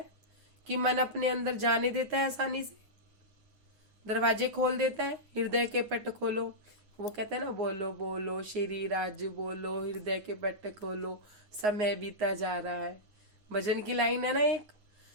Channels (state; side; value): late; left; 9.5 ms